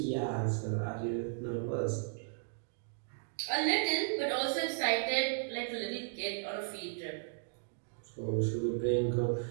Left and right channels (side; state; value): left; silent; digital silence